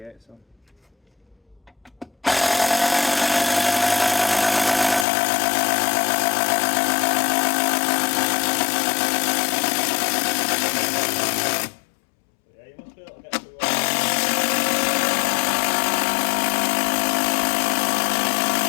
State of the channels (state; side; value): drops out; right; at 5.1 s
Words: on. Yeah, you must be able to get through.